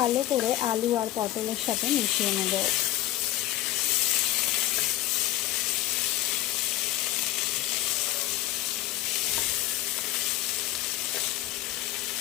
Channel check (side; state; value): right; quieter; 14.9 dB